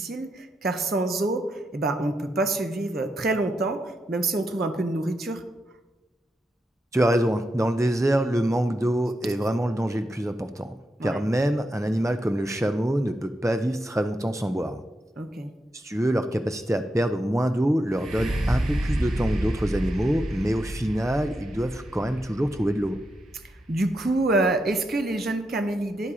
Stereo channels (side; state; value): both; normal; correlation 0.84